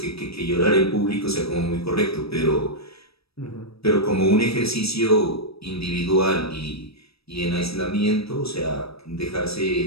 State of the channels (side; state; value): right; late; 0.77 ms